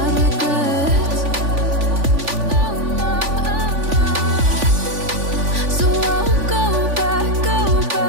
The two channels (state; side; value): late; left; 3.5 ms